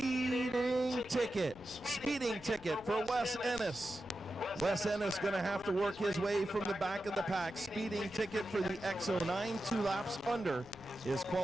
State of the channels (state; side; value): noise; left; rumble, 21 dB below the sound